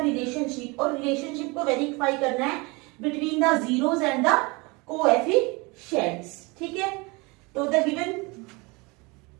रिलेशनशिप, और रिलेशनशिप को वेरीफाई करना है between the zeros and the coefficients. ठीक है, तो द गिवन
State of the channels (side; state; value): left; quieter; 26.7 dB